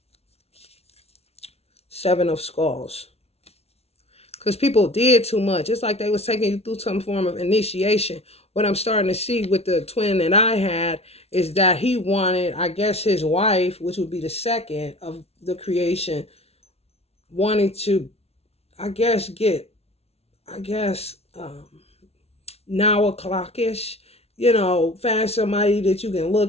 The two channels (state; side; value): late; right; 0.30 ms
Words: Seven of Skulls. Because people did too much. It's like they was taking you through some form of initiation. What I'm starting to see with the twin that I had is that he wanted, I guess his wife, which would be the second of the creation, wanting to, I guess, now o'clockish, find somebody that you can